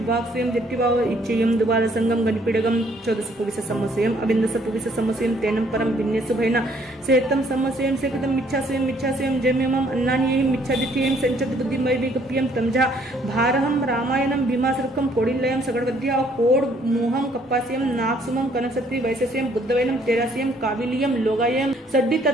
स्वयं दिट्टिवाव इच्छेयम द्वार संगम गणपिडगम चौदस पुविस समस्यम अबिंदस पुविस समस्यम तेनम परम भिन्नेसु भैना सेतम समस्यम सेकतम मिच्छास्वयम जम्यमम अन्नानियहिम मिच्छादित्यहिम संचत बुद्धिमय विगप्यम तमजा भारहम रामायणम भीमासुरकम कोडिलयम सगडवद्या कोड मोहम कप्पास्यम नागसुमम कनकसत्रि वैशस्यम बुद्धवैनम तेरास्यम काविलियम लोगायम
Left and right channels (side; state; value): both; normal; correlation 0.64